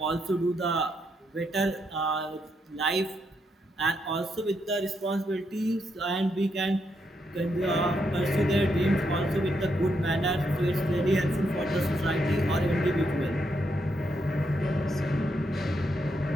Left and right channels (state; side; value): normal; both; correlation 0.79